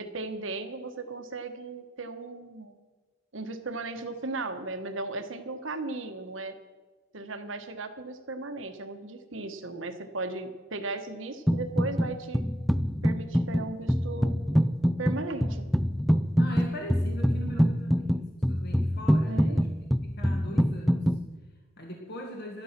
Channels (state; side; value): normal; both; correlation 0.86